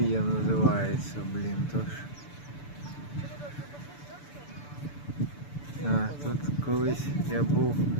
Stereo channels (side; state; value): right; late; 6.9 ms